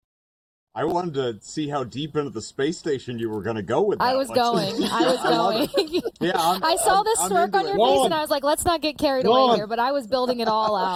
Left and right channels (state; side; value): identical; both; correlation 1.00